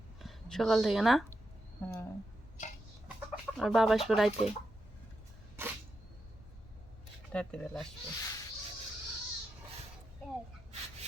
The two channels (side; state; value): both; normal; correlation 0.86